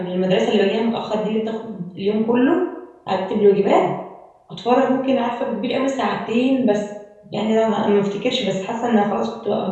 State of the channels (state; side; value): identical; both; correlation 1.00